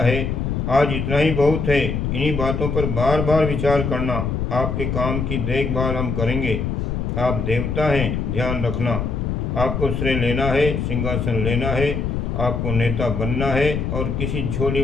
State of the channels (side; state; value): left; noise; rumble, 1 dB below the sound